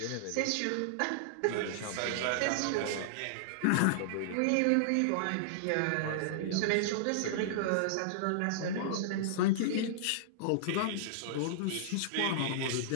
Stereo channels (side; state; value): both; different; correlation -0.01